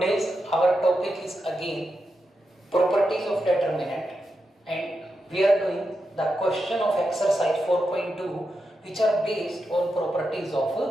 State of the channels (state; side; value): normal; both; correlation 0.87